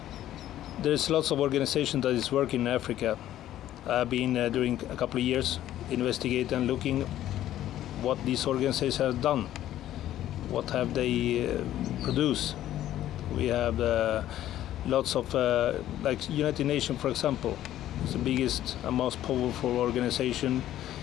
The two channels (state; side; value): quieter; right; 12.8 dB